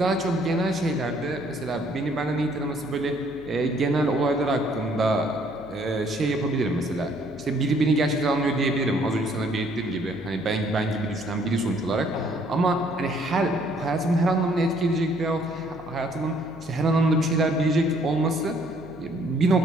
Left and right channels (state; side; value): noise; left; hum, 20 dB below the sound